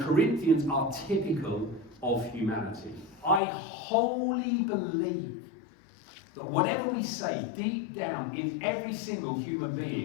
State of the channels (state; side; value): drops out; right; at 3.4 s